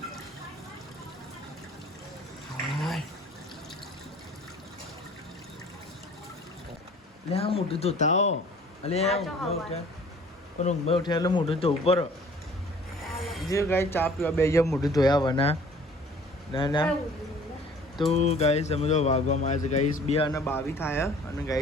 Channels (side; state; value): both; normal; correlation 0.51